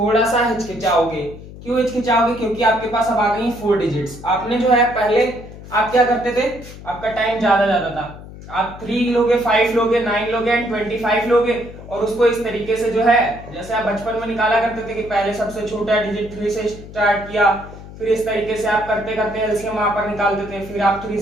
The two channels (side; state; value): left; noise; hum, 15 dB below the sound